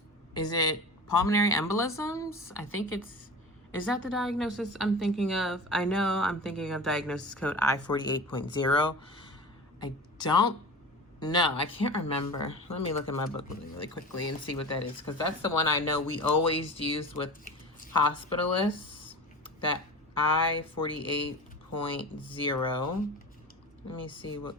is it pulmonary embolisms? I think is that the diagnosis I'm thinking of? I know I'm thinking of diagnosis code I-48.0. I don't know. I can't remember. Let me look at my book really quickly and see what that is, because that's the one I know we always use with hospitalists, that I-48.0. Let me see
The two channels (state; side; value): normal; both; correlation 0.33